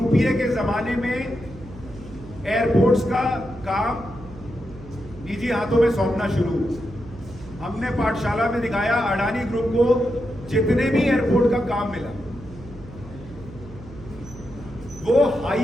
के जमाने में एयरपोर्ट्स का काम निजी हाथों में सौंपना शुरू, हमने पाठशाला में दिखाया अडानी ग्रुप को जितने भी एयरपोर्ट का काम मिला वो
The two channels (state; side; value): noise; right; hum, 17 dB below the sound